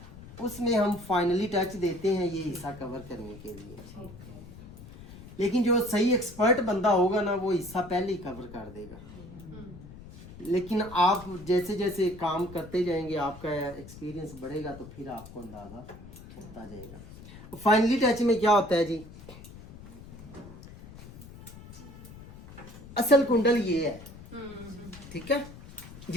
उसमें हम फाइनली टच देते हैं ये हिस्सा कवर करने के लिए। लेकिन जो सही एक्सपर्ट बंदा होगा ना वो हिस्सा पहले ही कवर कर देगा। लेकिन आप जैसे जैसे काम करते जाएंगे आपका एक्सपीरियंस बढ़ेगा तो फिर आपको अंदाजा होता जाएगा। फाइनली टच में क्या होता है जी, असल कुंडल ये है, ठीक है,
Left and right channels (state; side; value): noise; left; rumble, 17 dB below the sound